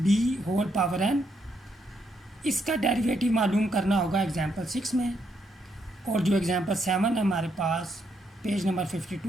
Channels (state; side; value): normal; both; correlation 0.76